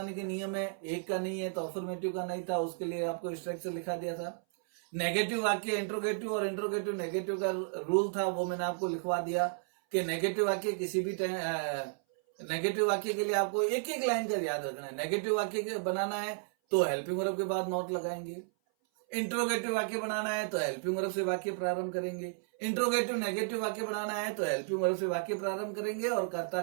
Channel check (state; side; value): silent; left; 56 dB below the other